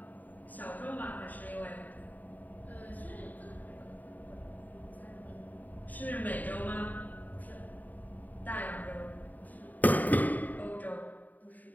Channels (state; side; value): late; right; 0.082 ms